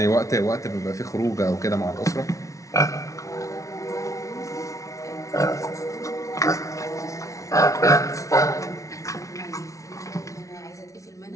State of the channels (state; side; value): late; right; 0.16 ms